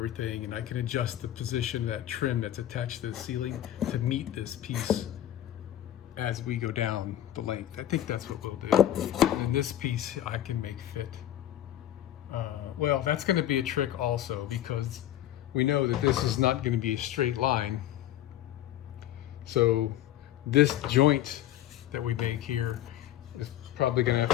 and I can adjust the position of that trim that's attached to the ceiling to meet this piece as we go down the length. I think that's what we'll do. And this piece I can make fit. Well, that's going to be a trick also, because we know that this is not going to be a straight line. So this joint that we make here is probably going to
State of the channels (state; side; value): quieter; right; 12.4 dB